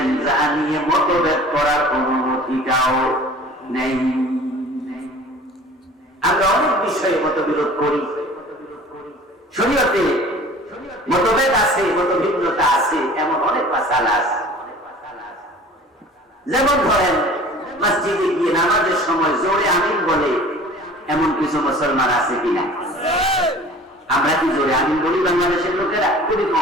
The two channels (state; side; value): normal; both; correlation 0.45